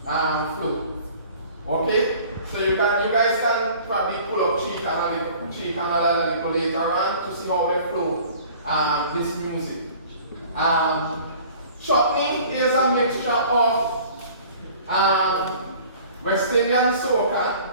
flow. Okay? So you guys can probably pull up Tree Canal a little later on to see how they flow this music. Chutney is a mixture of West Indian soca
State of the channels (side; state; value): both; inverted; correlation -0.48